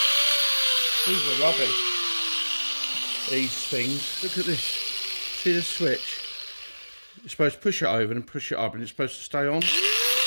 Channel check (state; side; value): inverted; both; correlation -1.00